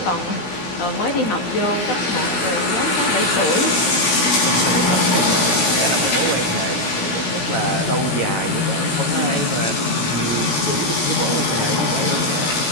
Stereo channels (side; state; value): right; late; 17 ms